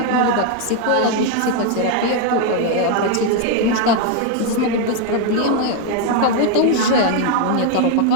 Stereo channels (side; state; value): both; different; correlation 0.01